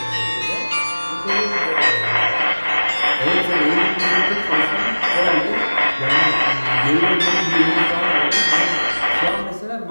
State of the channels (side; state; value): both; inverted; correlation -1.00